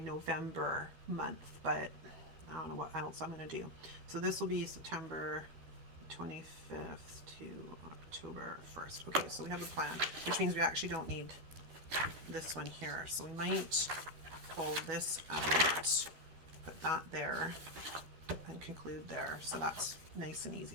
month, but I don't know what else I'm going to do. So this will be September 25th to October 1st. Okay, so we have a plan, which means we actually don't need this one here. So we might pull this out, put that there, and conclude there. So that's nice and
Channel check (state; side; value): late; left; 12 ms